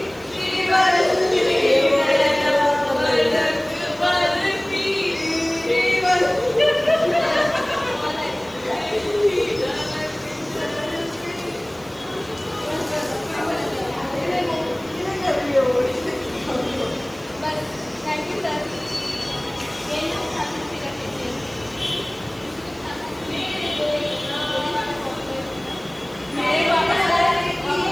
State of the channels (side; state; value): right; noise; hiss, 25 dB below the sound